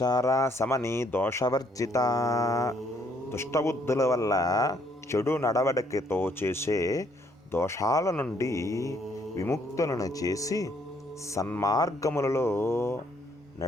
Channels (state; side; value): normal; both; correlation 0.67